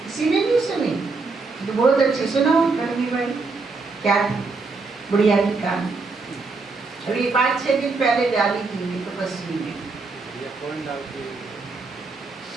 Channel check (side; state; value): left; quieter; 4.0 dB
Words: किसी ने नहीं सुनी तो बहुत अच्छी सुनाओ करनी भाई, क्या बुढ़िया की कहानी अभी 5-6 दिन पहले डाली थी तपस्वी में।